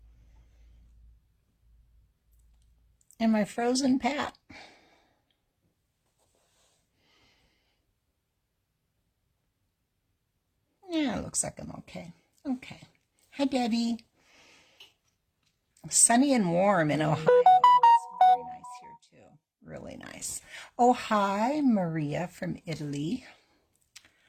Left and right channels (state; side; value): identical; both; correlation 1.00